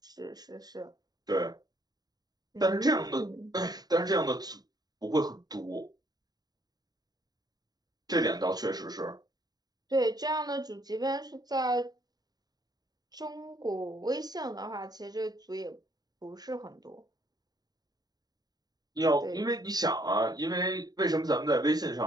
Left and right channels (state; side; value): late; left; 0.19 ms